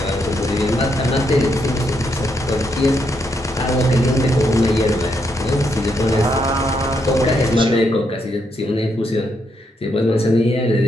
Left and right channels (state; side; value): normal; both; correlation 0.78